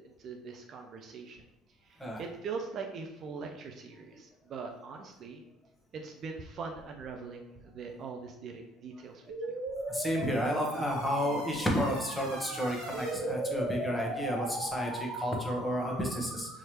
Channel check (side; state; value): both; normal; correlation 0.65